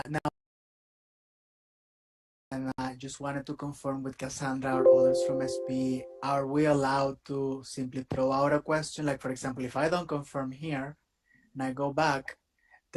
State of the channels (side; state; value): both; identical; correlation 1.00